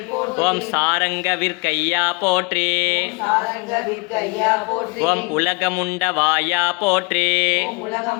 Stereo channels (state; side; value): quieter; right; 30.8 dB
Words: ஓம் சாரங்க விற்கையா போற்றி. ஓம் உலகமுண்ட வாயா போற்றி.